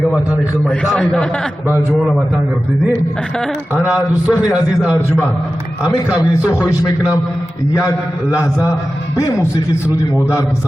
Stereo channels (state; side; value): normal; both; correlation 0.94